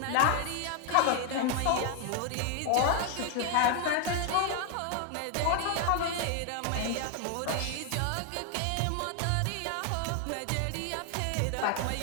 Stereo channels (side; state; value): both; different; correlation 0.00